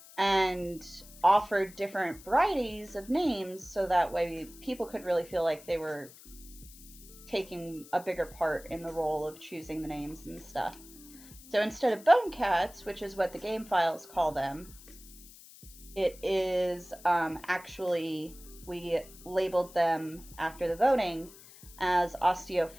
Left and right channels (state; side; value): noise; left; hiss, 20 dB below the sound